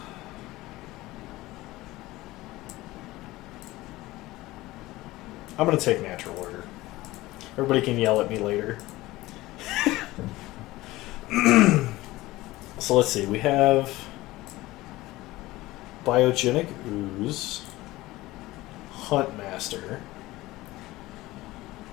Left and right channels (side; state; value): right; quieter; 18.4 dB